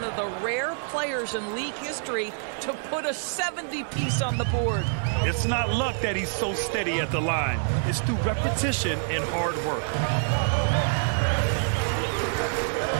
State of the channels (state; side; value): silent; left; digital silence